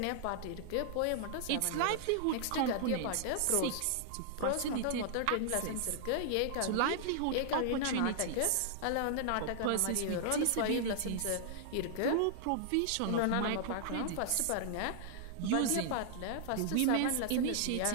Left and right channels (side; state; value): both; different; correlation -0.01